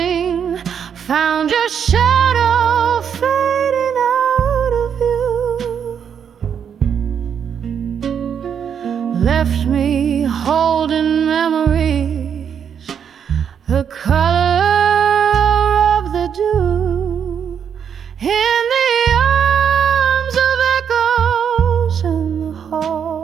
found your shadow fading out of you, left me holding memories, the color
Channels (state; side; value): quieter; left; 7.8 dB